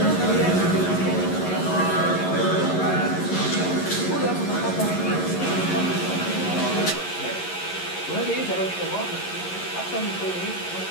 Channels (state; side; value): late; right; 11 ms